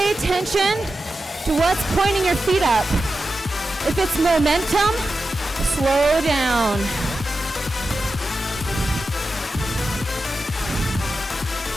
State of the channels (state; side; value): normal; both; correlation 0.91